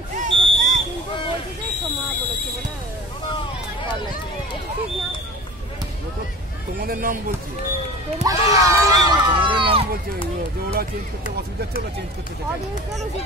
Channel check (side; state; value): both; normal; correlation 0.38